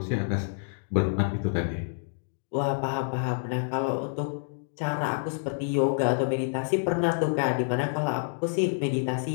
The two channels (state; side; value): silent; right; digital silence